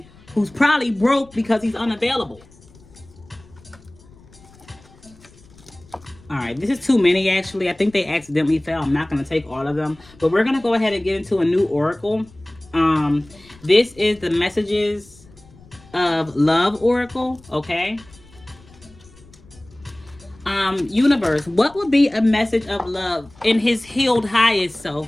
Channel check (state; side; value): noise; left; rumble, 25 dB below the sound